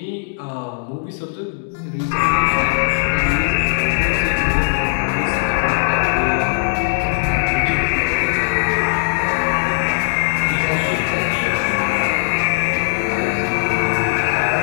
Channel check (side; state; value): right; silent; 67 dB below the other